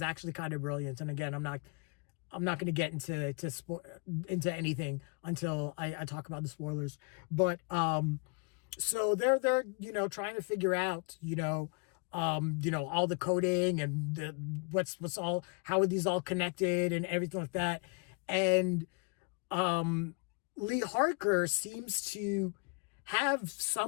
actually kind of brilliant. And again, I'm not going to get into anything until I talk about the spoilers. But so they're trying to figure out all the coding and what's all, how are these all connected and everything like that. And Lee Harker seems to have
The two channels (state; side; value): quieter; right; 34.8 dB